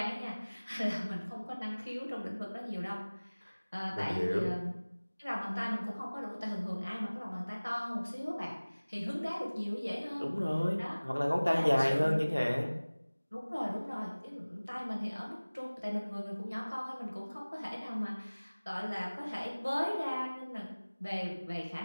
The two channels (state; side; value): inverted; both; correlation -1.00